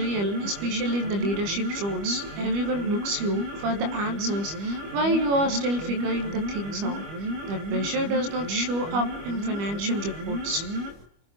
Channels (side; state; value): left; late; 25 ms